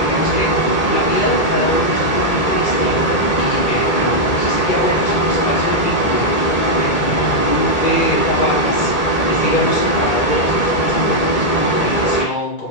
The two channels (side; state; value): right; late; 2.2 ms